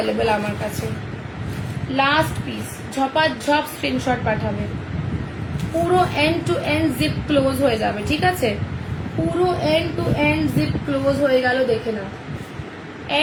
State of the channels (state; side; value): identical; both; correlation 1.00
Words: আমার কাছে, লাস্ট পিস, ঝপাঝপ স্ক্রিনশট পাঠাবে। পুরো end to end zip close হয়ে যাবে, ঠিক আছে, পুরো end to end zip close হয়ে গেল, দেখে না,